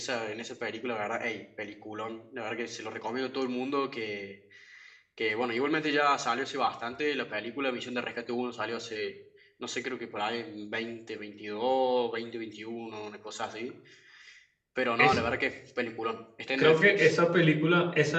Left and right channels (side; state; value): both; identical; correlation 1.00